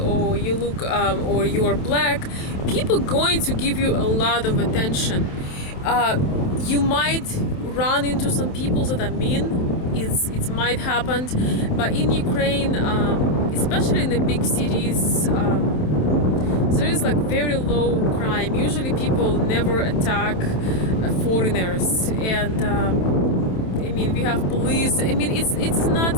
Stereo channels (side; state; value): right; late; 27 ms